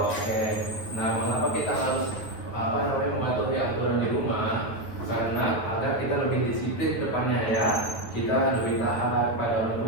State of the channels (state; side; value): late; right; 8.9 ms